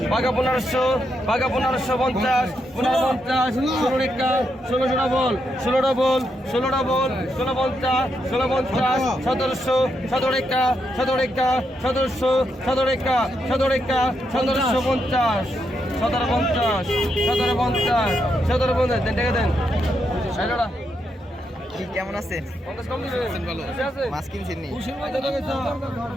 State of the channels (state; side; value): normal; both; correlation 0.81